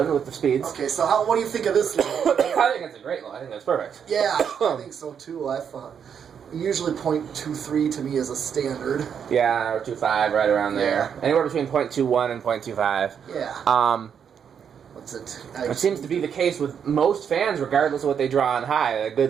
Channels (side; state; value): left; quieter; 7.6 dB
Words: with the speeds. Okay, so what do you think of this low? I think it's a great low. I think that's perfect. Yeah, I think so too. I thought usually 0.23 to me is a standard. Yeah, or 2.5, right around there. Anywhere between 0.21 and 0.25. Yeah. What's it? It seems to be the case with most fans, regardless of what they draw on high. A